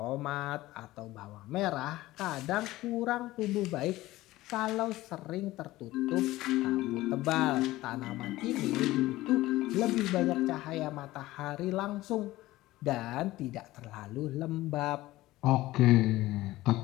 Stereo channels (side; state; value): right; quieter; 17.4 dB